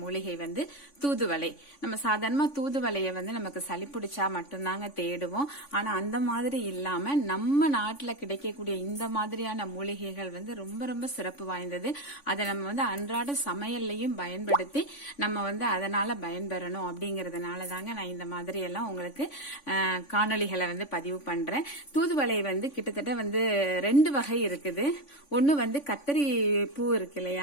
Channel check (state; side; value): late; right; 3.5 ms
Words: வந்து தூதுவளை. நம்ம சாதாரணமாக தூதுவளையை வந்து நமக்கு சளி பிடிச்சா மட்டும்தாங்க தேடுவோம். ஆனால் அந்த மாதிரி இல்லாமல் நம்ம நாட்டில் கிடைக்கக்கூடிய இந்த மாதிரியான மூலிகைகள் வந்து ரொம்ப ரொம்ப சிறப்பு வாய்ந்தது. அதை நம்ம வந்து அன்றாட சமையல்லையும் பயன்படுத்தி நம்ம வந்து அதனால பயன்பெறணும் அப்படிங்கறதுனால தாங்க நான் இந்த மாதிரி எல்லாம் உங்களுக்கு காணொளிகளை வந்து பதிவு பண்றேன். தூதுவளை வந்து கிட்டத்தட்ட வந்து 2 வகை இருக்குது. ஒன்னு வந்து கத்தரி பூ இருக்கு